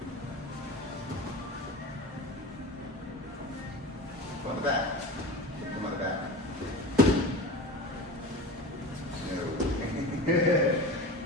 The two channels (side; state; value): both; normal; correlation 0.30